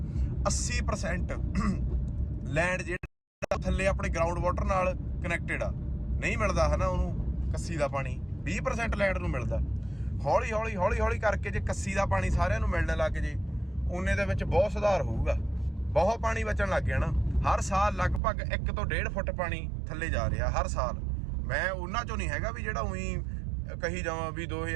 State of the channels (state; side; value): drops out; left; at 18.2 s